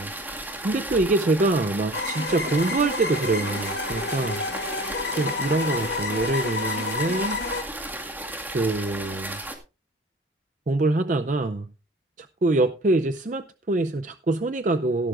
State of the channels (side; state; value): both; normal; correlation 0.45